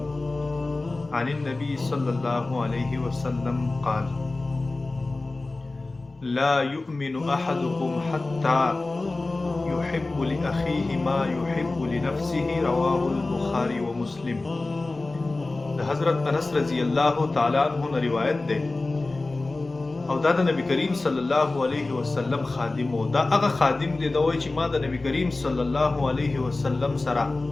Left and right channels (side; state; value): right; quieter; 3.2 dB